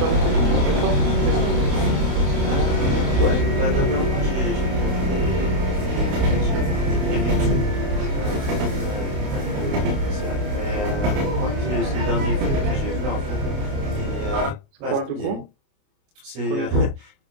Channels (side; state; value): left; late; 29 ms